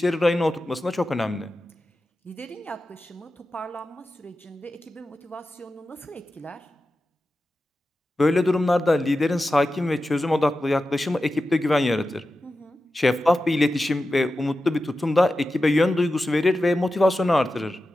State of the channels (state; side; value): normal; both; correlation 0.93